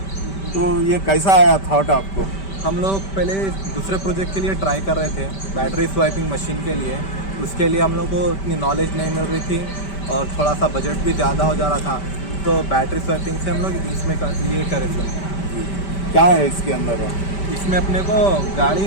तो ये कैसा आया थॉट आपको? हम लोग पहले दूसरे प्रोजेक्ट के लिए ट्राई कर रहे थे, बैटरी स्वाइपिंग मशीन के लिए। उसके लिए हम लोग को इतनी नॉलेज नहीं मिल रही थी और थोड़ा सा बजट भी ज़्यादा हो जा रहा था, तो बैटरी स्वाइपिंग से हम लोग इसमें ये करे थे। क्या है इसके अंदर? इसमें अपने को गाड़ी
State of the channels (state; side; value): late; right; 5.1 ms